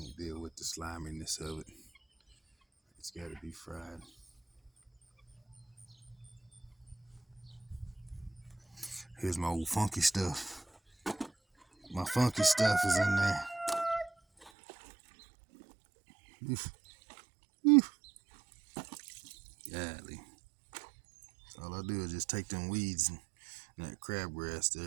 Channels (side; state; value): left; drops out; at 14.5 s